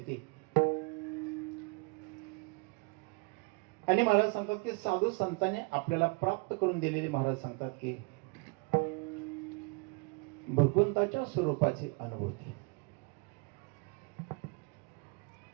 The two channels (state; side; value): quieter; left; 30.3 dB